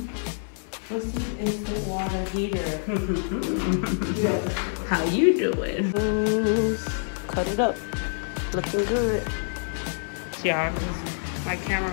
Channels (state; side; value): silent; right; digital silence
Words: What's this instant water heater? How you doing? Cut it up. Looking good. Y'all, my camera